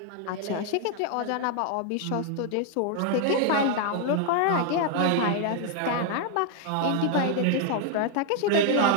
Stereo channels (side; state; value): both; different; correlation 0.00